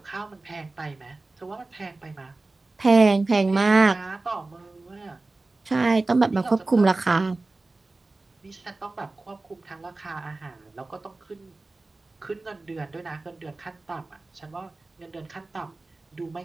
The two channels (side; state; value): left; quieter; 3.3 dB